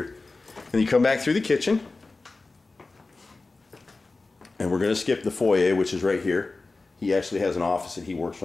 And you come back through the kitchen. And we're going to skip the foyer, which is right here. He actually has an office that he works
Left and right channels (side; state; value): right; quieter; 3.5 dB